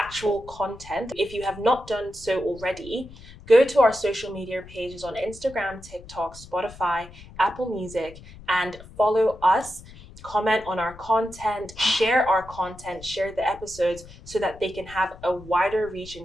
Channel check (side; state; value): left; noise; rumble, 18 dB below the sound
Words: content, if you have not done so already, go to our social media pages on Instagram, TikTok, Spotify, Apple Music, and follow us. Comment on our content, share our content, share the episodes so that they can have a wider reach